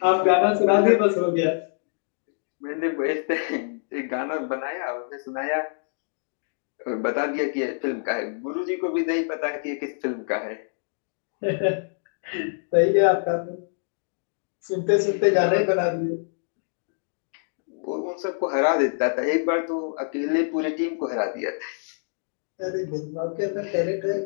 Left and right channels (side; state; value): right; silent; digital silence